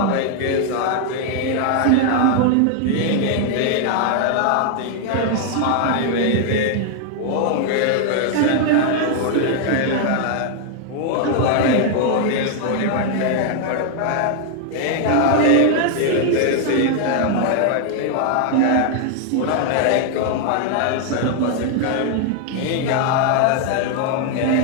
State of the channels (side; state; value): both; different; correlation 0.00